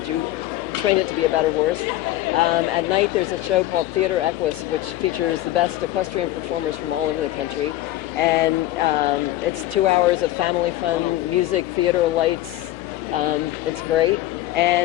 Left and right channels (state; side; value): quieter; right; 15.2 dB